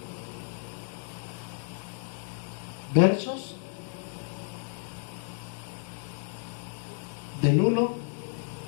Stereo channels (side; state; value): right; silent; 57 dB below the other